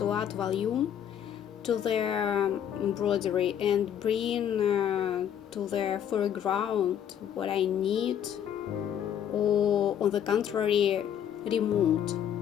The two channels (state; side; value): quieter; right; 9.4 dB